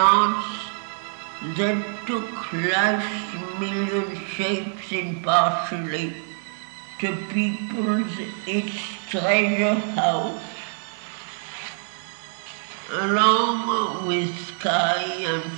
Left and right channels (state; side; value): silent; left; 62 dB below the other